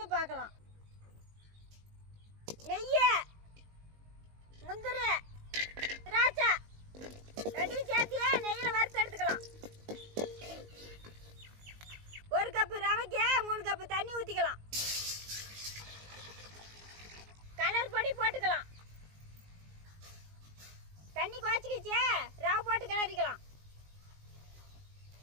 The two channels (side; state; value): left; late; 19 ms